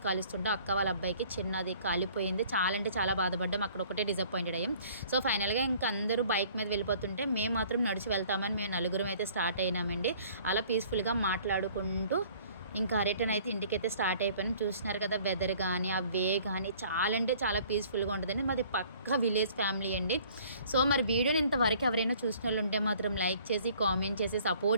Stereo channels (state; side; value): inverted; both; correlation -0.54